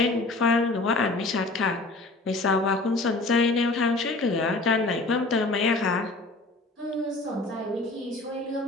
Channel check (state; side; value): quieter; right; 3.2 dB